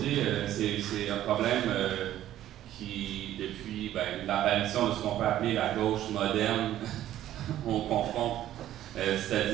c'est un problème qui, depuis l'apparition de ce qu'on peut appeler la gauche moderne, on confronte.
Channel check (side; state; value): left; quieter; 12.7 dB